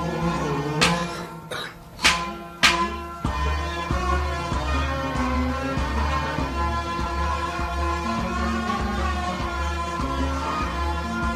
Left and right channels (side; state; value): both; identical; correlation 1.00